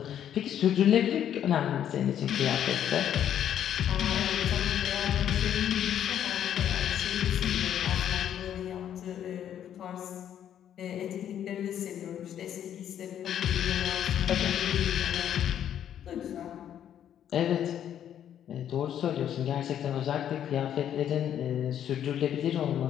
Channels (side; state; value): right; quieter; 10.1 dB